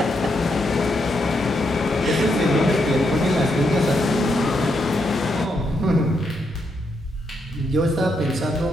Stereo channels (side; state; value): both; normal; correlation 0.80